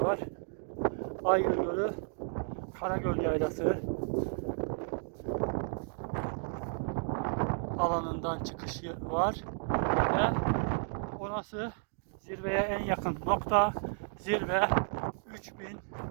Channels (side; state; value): left; silent; 56 dB below the other